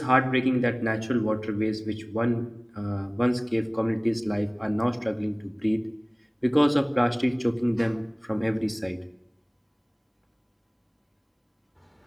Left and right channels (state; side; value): identical; both; correlation 1.00